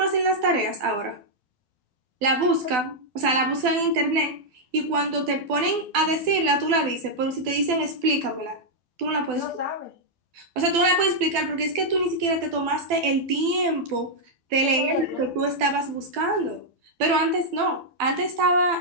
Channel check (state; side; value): late; left; 12 ms